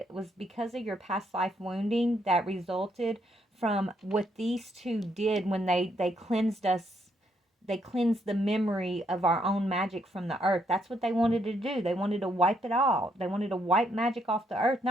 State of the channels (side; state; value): both; normal; correlation 0.74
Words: was because of your past life wounding that resulted from what these two did when they cleansed us. They cleansed the memory of our own magic from the earth. That's what they wanted to do. They wanted to wipe it out. They wanted to wipe magic off the earth.